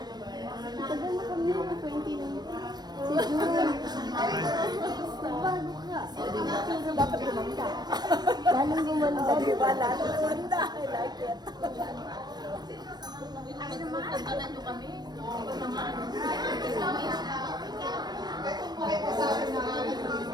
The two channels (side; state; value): left; late; 0.20 ms